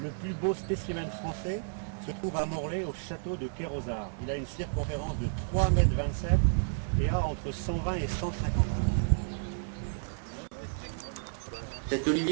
Le plus beau spécimen français se trouve à Morlaix au château de Kérosard. Il a une circonférence de 3,27 m et a entre 120 et 150 ans. Cet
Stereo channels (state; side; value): silent; left; 57 dB below the other